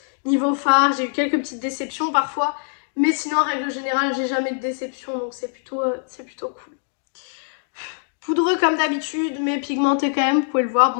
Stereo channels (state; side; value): silent; right; digital silence